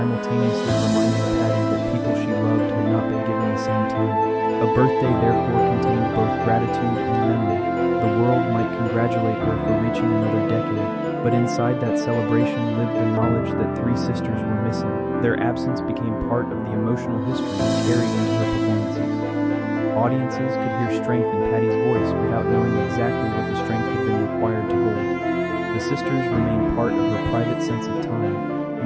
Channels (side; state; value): both; identical; correlation 1.00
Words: reminding Patti that people she loved had not been given the same time. A birthday therefore contained both gratitude and memory. The world might congratulate her for reaching another decade, but inside that celebration lived the knowledge that three sisters were missing. Their absence became part of the emotional history carried into her performances. Audiences could hear strength in Patti's voice without knowing exactly what the strength had been required to hold. The sisters remained part of her private sense of time,